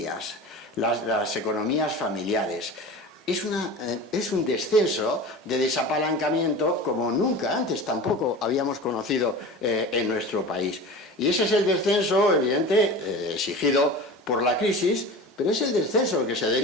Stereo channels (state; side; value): normal; both; correlation 0.34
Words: las economías familiares. Es un descenso de desapalancamiento como nunca antes tampoco habíamos conocido en nuestro país. Y ese es el descenso, evidente, exigido por la crisis, pero es el descenso que se